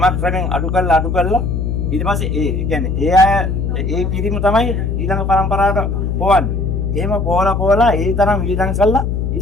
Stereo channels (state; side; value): noise; left; hum, 1 dB below the sound